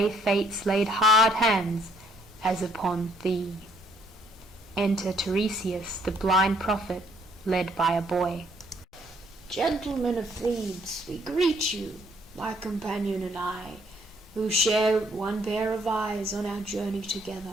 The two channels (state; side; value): normal; both; correlation 0.66